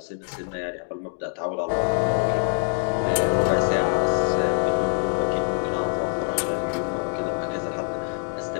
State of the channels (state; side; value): silent; right; 62 dB below the other